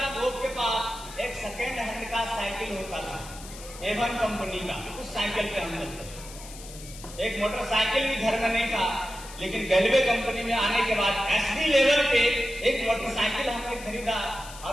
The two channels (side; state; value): left; noise; hiss, 15 dB below the sound